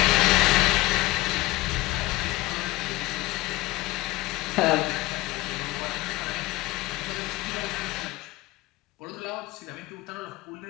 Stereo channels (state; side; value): quieter; right; 19.8 dB